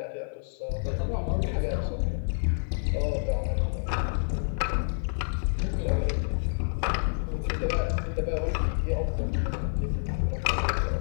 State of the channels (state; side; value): silent; right; 56 dB below the other